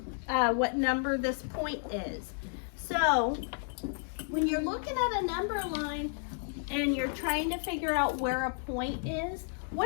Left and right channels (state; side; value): silent; right; 56 dB below the other